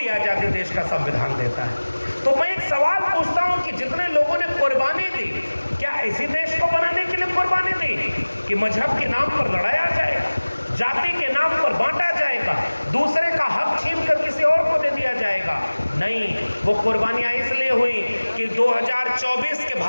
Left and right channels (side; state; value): both; inverted; correlation -1.00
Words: आजादी देश का संविधान देता है। तो मैं एक सवाल पूछता हूं कि जितने लोगों ने कुर्बानी दी, क्या इसी देश को बनाने के लिए कुर्बानी दी कि मजहब के नाम पर लड़ाया जाएगा, जाति के नाम पर बांटा जाएगा, दूसरे का हक छीन कर किसी और को दे दिया जाएगा? नहीं, वो कुर्बानियां इसलिए हुई कि 2024 के